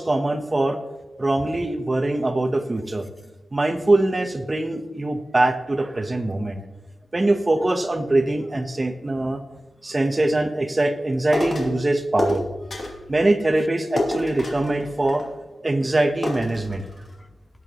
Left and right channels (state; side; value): normal; both; correlation 0.97